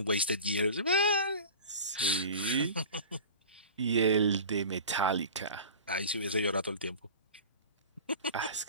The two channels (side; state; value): both; inverted; correlation -0.37